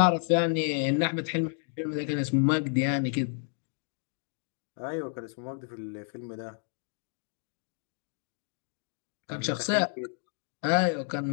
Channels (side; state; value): right; silent; 57 dB below the other